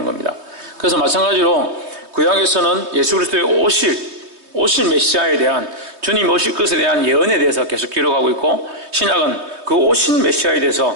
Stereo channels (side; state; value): left; late; 3.2 ms